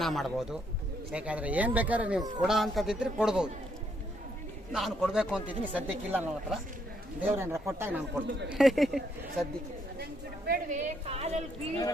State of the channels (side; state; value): both; normal; correlation 0.73